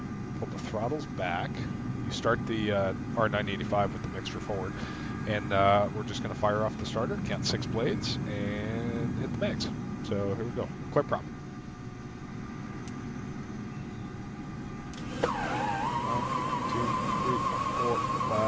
Pull the throttles back. You start the R985 with the mixture forward, and we're just going to fire off the starter, count 6 blades, and hit the mags. So here we go. Clear prop. 1, 2, 3, 4,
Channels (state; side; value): identical; both; correlation 1.00